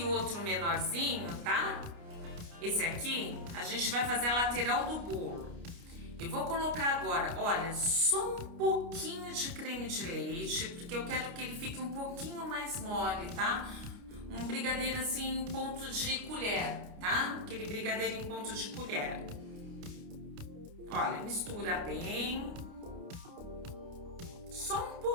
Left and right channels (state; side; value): late; left; 29 ms